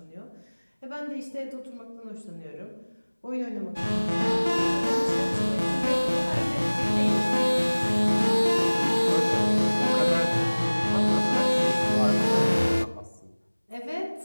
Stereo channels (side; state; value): both; inverted; correlation -1.00